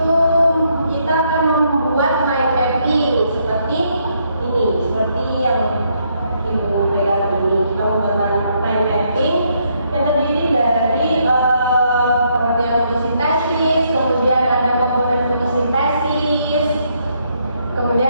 kita akan membuat mind mapping seperti ini, seperti yang Ibu pegang ini. Kita membuat mind mapping yang terdiri dari pengertian fotosintesis, kemudian ada komponen fotosintesis,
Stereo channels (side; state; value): both; inverted; correlation -0.73